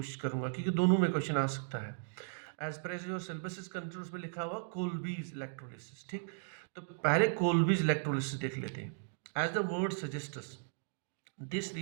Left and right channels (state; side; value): silent; left; digital silence